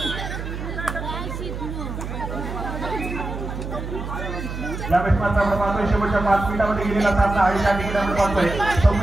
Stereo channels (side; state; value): right; noise; hum, 7 dB below the sound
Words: यावेळेस मात्र आपण पाहतोय शेवटच्या 5 मिनिटांमध्ये गेलेला सामना आणि त्या ठिकाणी आपण पाहतोय